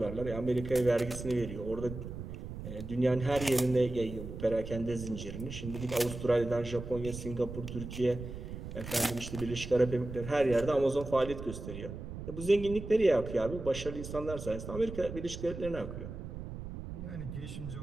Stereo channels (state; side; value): noise; right; rumble, 9 dB below the sound